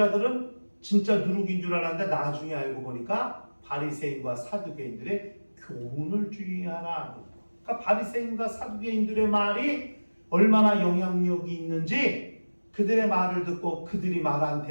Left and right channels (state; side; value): inverted; both; correlation -1.00